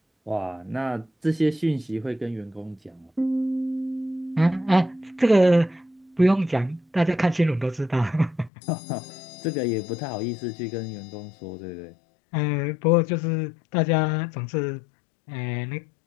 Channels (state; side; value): drops out; right; at 8.5 s